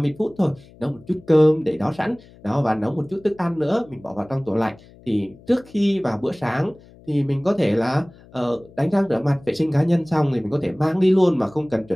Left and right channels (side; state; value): left; noise; hum, 24 dB below the sound